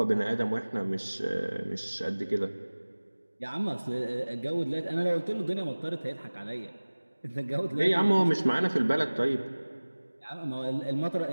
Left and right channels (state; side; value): inverted; both; correlation -1.00